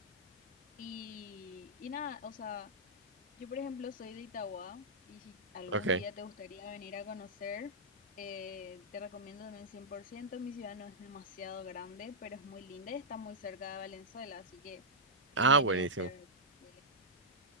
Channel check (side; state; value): both; normal; correlation -0.10